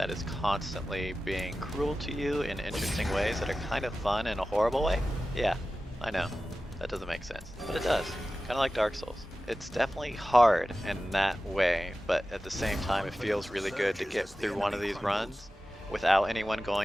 is constantly being cruel to you in interesting ways that are kind of fun in a horrible way? Yeah, I know. That doesn't make sense. But it does. Kind of like Dark Souls. It's definitely hard in that way, but at the same time it feels really good to get through one of these runs without anyone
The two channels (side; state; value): both; normal; correlation 0.95